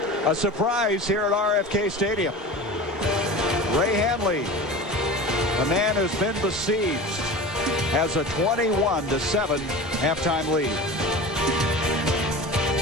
A surprise here at RFK Stadium. Ray Hanley, the man who's been besieged, has a 21-7 halftime lead.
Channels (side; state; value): both; normal; correlation 0.33